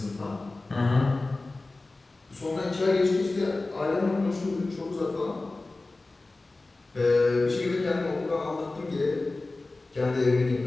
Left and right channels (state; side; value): quieter; right; 3.2 dB